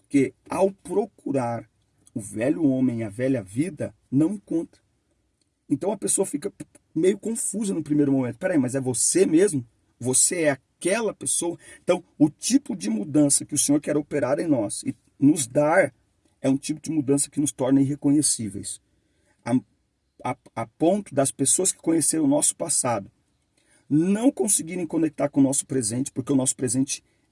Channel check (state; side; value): identical; both; correlation 1.00